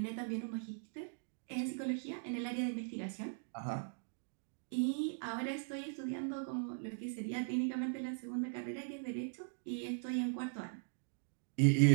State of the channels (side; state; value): left; silent; digital silence